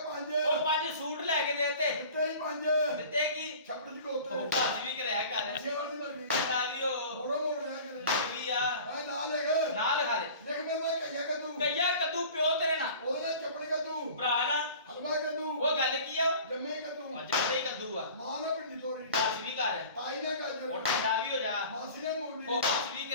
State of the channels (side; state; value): both; inverted; correlation -0.42